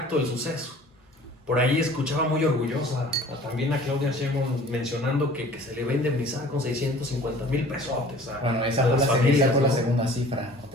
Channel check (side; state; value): both; normal; correlation 0.48